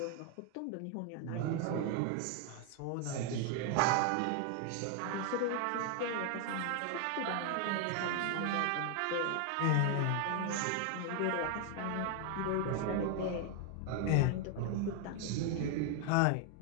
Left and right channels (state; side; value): different; both; correlation 0.00